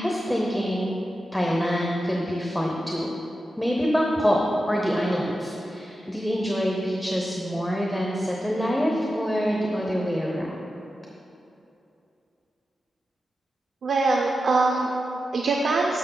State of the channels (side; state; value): both; normal; correlation 0.91